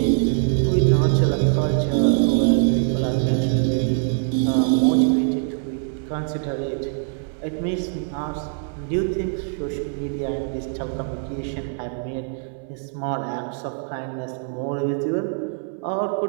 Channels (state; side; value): silent; left; 63 dB below the other